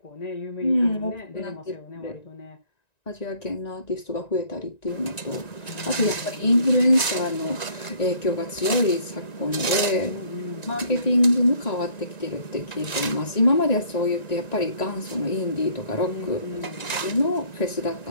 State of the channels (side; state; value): right; late; 1.9 ms